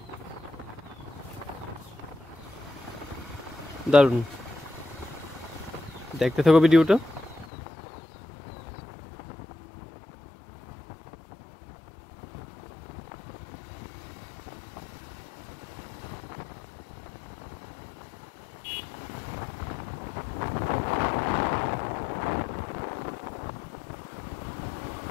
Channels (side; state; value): right; drops out; at 7.5 s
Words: দারুণ। দেখতে থাকো ভিডিওটা।